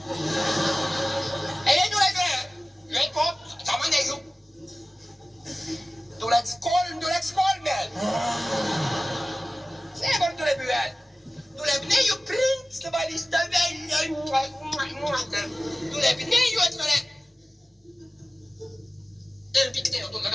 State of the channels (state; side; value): normal; both; correlation 0.97